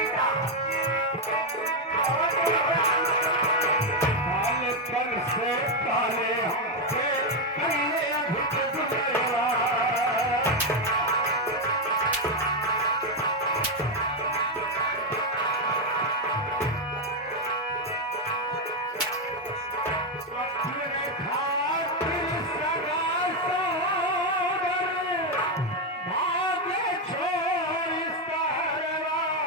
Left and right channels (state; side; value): normal; both; correlation 0.04